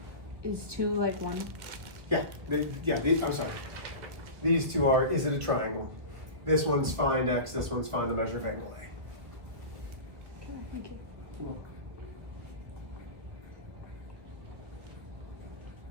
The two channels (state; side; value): late; left; 1.9 ms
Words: Is 2 like 1? Yeah. I'm sorry. These 2 are, is it a triangle? This one's find x, this one's find the measure of angle A. Okay, thank you. Cool.